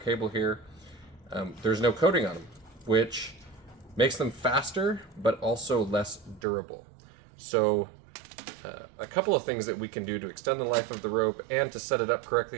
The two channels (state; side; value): drops out; left; at 6.4 s